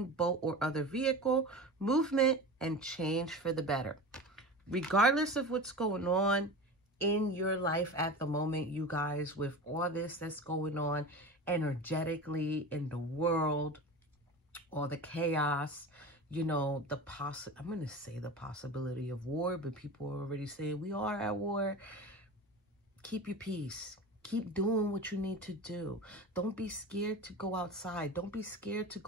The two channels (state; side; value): normal; both; correlation 0.31